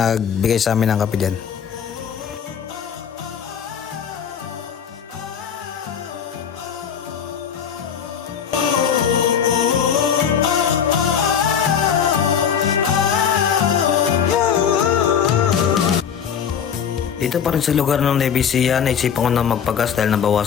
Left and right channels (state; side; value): quieter; right; 7.9 dB